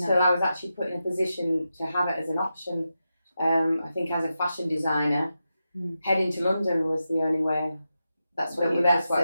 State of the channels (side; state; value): both; inverted; correlation -0.89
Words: I was actually put in a position to have it as an option. I think as a fashion designer, heading to London was the only way. That's what